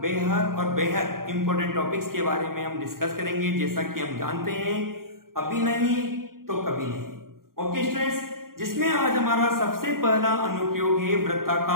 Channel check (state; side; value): late; left; 0.92 ms